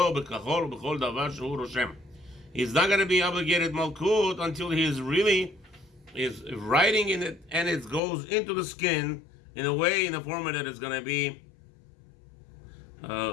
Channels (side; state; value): right; drops out; at 8.0 s